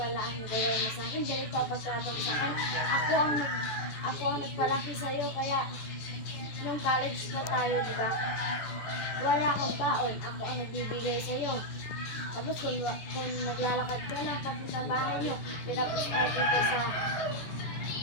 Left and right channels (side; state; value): right; late; 14 ms